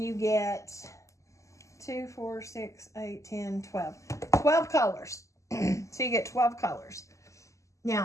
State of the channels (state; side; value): late; right; 0.15 ms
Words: you get 2, 4, 6, 8, 10, 12. 12 colors. So you get 12 colors.